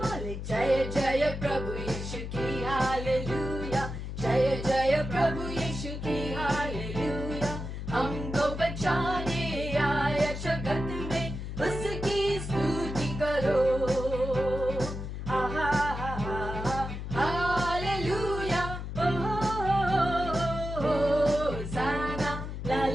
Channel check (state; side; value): noise; left; hum, 6 dB below the sound